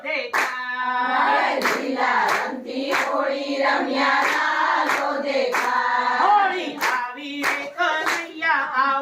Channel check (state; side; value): identical; both; correlation 1.00